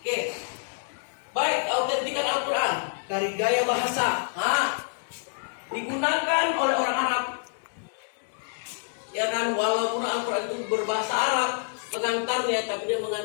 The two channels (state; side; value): silent; right; digital silence